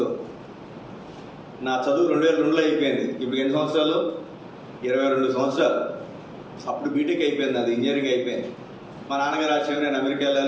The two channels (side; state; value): both; identical; correlation 1.00